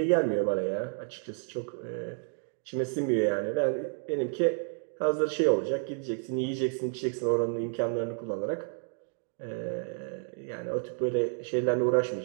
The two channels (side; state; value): left; silent; 57 dB below the other